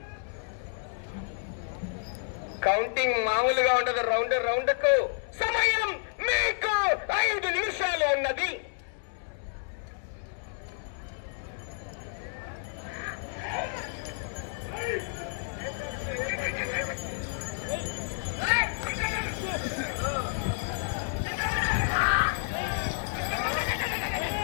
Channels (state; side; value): silent; right; digital silence